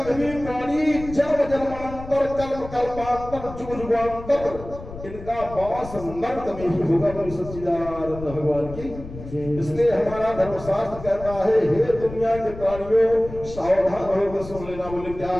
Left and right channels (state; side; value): noise; left; rumble, 13 dB below the sound